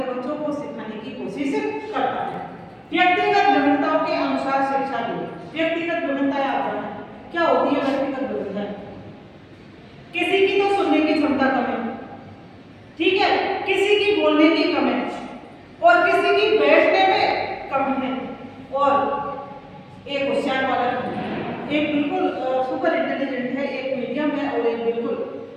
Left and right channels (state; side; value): identical; both; correlation 1.00